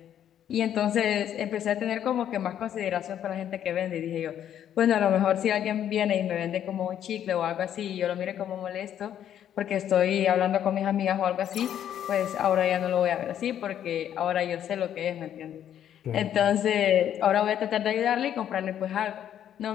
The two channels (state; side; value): quieter; right; 10.2 dB